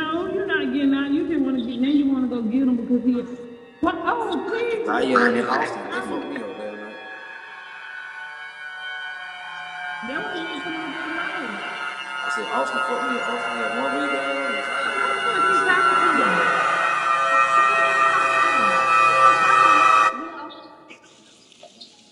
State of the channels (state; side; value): identical; both; correlation 1.00